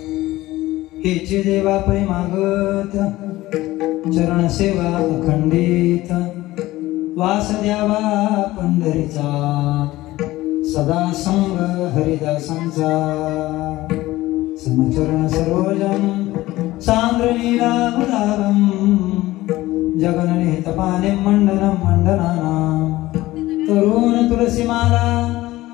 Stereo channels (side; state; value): right; quieter; 17.4 dB